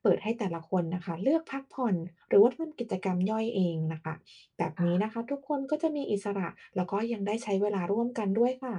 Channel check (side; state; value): both; identical; correlation 1.00